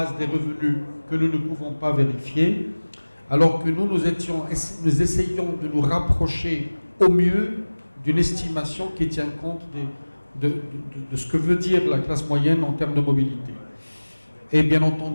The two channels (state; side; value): inverted; both; correlation -1.00